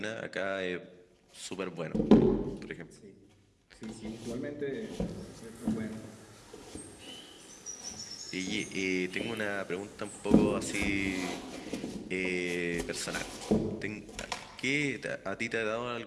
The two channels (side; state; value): both; identical; correlation 1.00